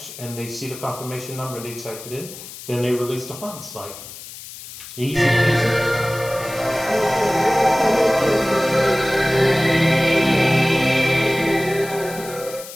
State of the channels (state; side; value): noise; left; hiss, 14 dB below the sound